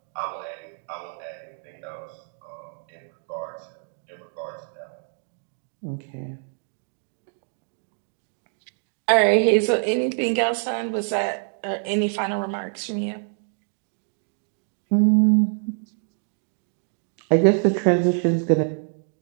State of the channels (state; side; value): silent; left; 61 dB below the other